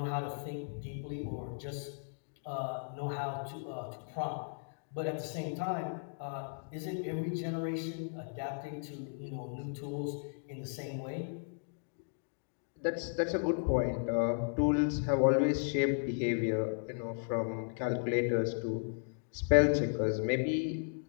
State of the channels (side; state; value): right; silent; digital silence